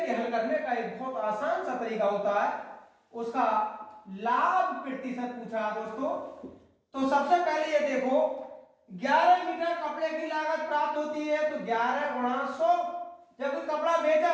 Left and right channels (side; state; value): both; identical; correlation 1.00